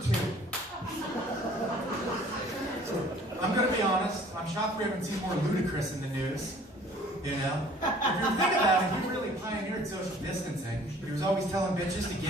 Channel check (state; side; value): normal; both; correlation 0.53